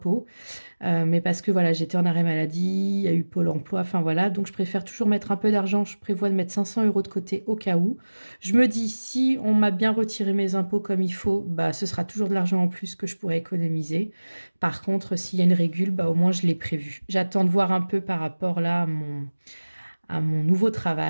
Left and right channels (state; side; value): inverted; both; correlation -1.00